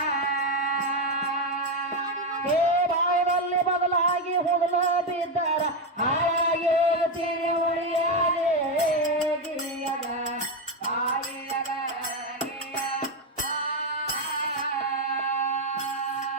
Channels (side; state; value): both; normal; correlation 0.08